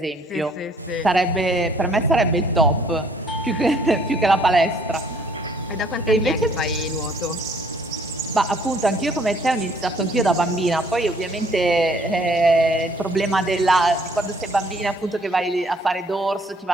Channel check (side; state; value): both; normal; correlation 0.61